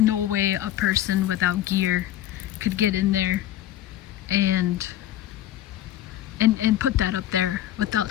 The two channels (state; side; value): quieter; right; 12.8 dB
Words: way a person without gear could get in there and put that up there